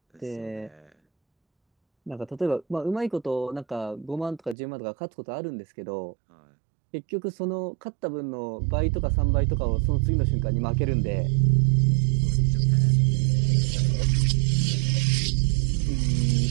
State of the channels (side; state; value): left; drops out; at 4.5 s